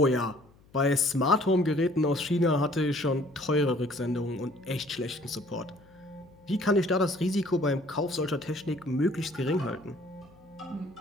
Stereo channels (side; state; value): left; noise; hum, 28 dB below the sound